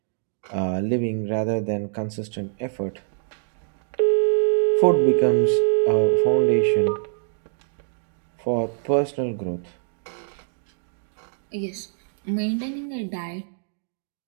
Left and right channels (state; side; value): silent; left; digital silence